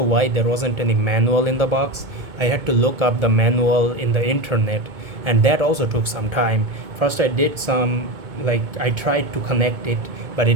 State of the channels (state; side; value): late; left; 2.2 ms